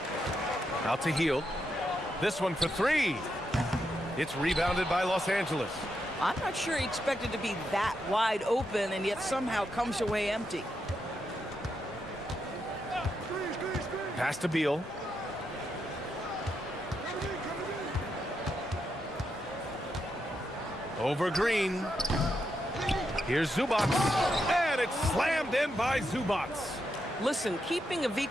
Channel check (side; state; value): both; normal; correlation 0.83